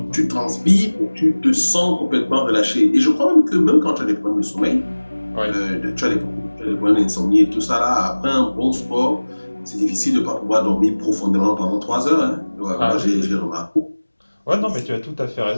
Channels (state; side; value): inverted; both; correlation -1.00